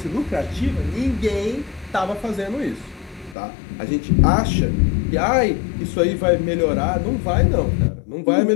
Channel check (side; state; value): right; drops out; at 3.4 s